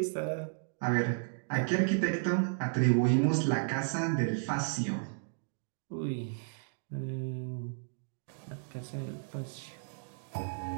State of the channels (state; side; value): silent; left; digital silence